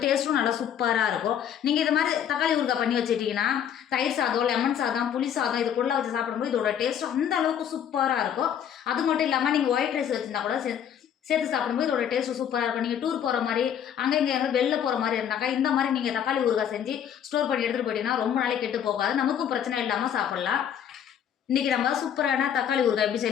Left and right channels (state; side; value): quieter; right; 9.1 dB